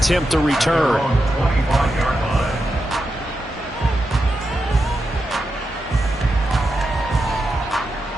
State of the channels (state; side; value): normal; both; correlation 0.88